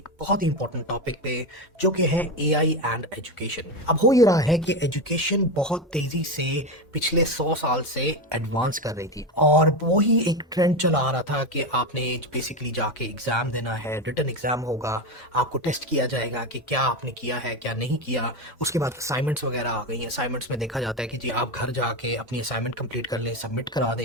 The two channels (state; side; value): normal; both; correlation 0.16